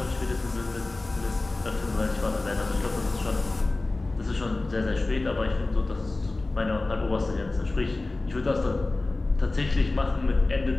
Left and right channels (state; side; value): quieter; right; 3.1 dB